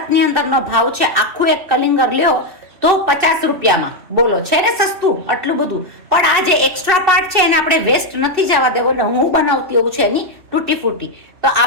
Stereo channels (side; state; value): left; late; 2.7 ms